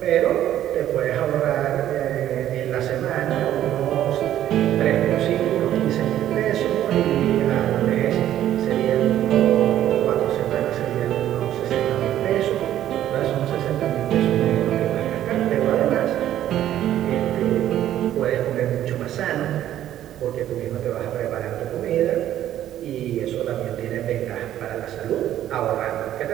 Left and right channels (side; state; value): left; quieter; 12.0 dB